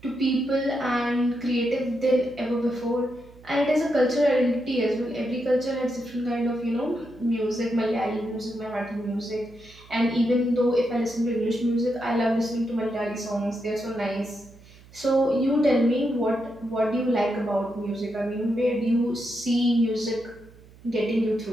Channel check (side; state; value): right; noise; hum, 23 dB below the sound